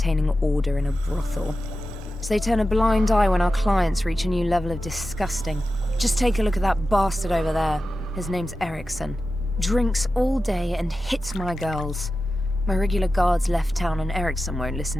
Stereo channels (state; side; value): normal; both; correlation 0.93